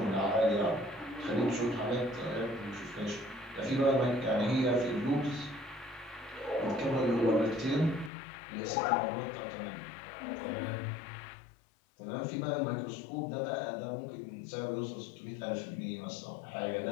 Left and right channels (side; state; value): right; drops out; at 8.1 s